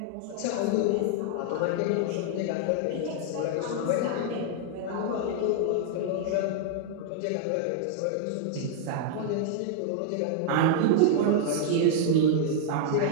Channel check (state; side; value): different; both; correlation 0.00